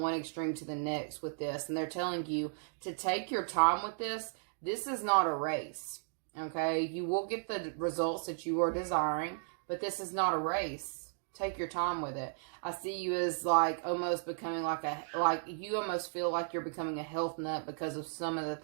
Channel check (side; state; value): left; silent; digital silence